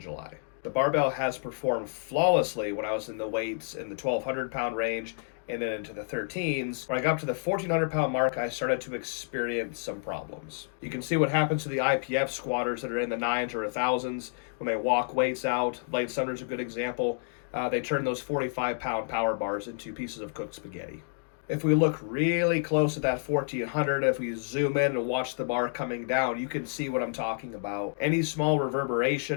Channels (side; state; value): right; silent; digital silence